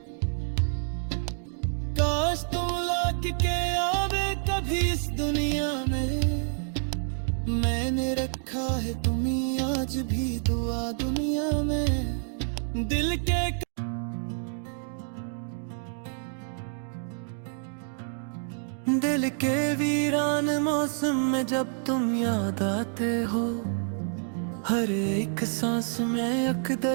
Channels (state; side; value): silent; left; 59 dB below the other